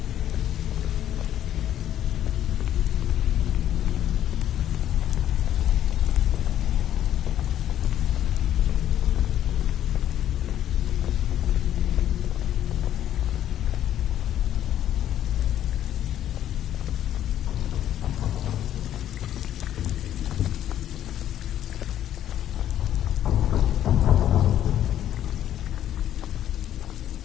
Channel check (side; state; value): right; quieter; 11.3 dB